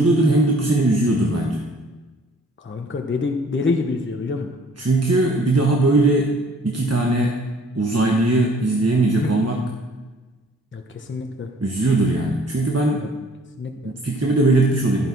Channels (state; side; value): normal; both; correlation 0.56